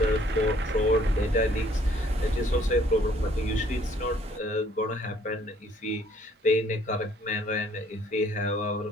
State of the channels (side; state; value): both; normal; correlation 0.61